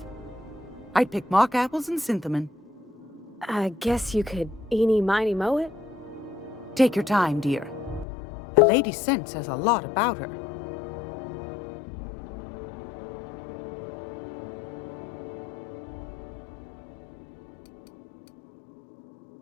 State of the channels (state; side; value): drops out; right; at 8.1 s